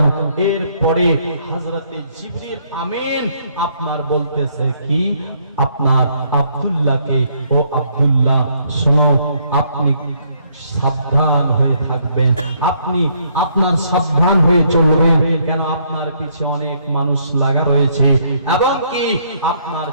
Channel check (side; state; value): both; inverted; correlation -0.69